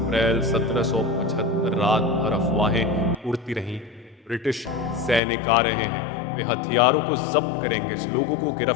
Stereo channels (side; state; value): right; drops out; at 5.2 s